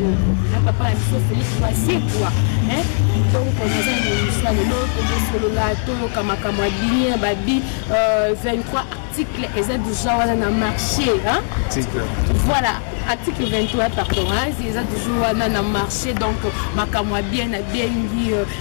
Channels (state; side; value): silent; right; 66 dB below the other